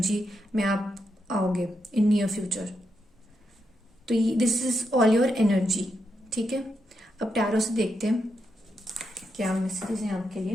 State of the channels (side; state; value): both; normal; correlation 0.83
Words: में आप आओगे इन नियर फ्यूचर। तो this is all your energy. ठीक है, अब टैरो से देखते हैं क्या मैसेजेस हैं आपके लिए।